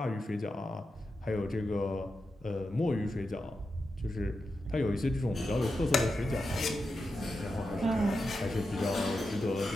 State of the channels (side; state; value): both; normal; correlation 0.89